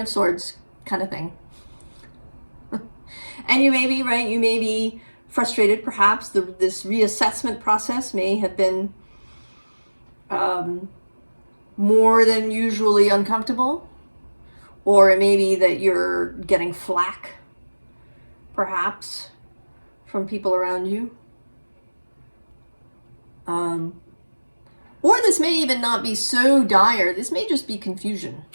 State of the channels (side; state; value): both; inverted; correlation -1.00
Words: of Swords kind of thing, and you may be frustrated, perhaps this reassessment process may have been more than usually uncomfortable, or it may be that you're getting flack, perhaps, from people around you. Or this may even not be so dire. This may just be confusion.